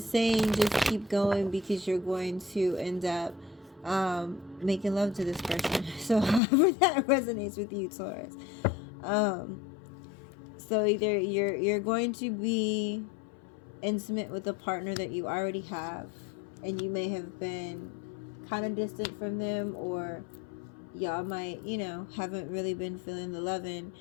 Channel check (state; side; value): drops out; right; at 6.4 s